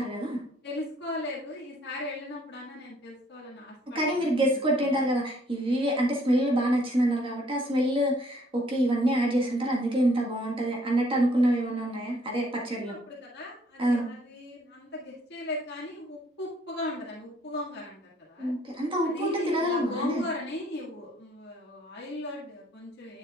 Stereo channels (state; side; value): normal; both; correlation 0.63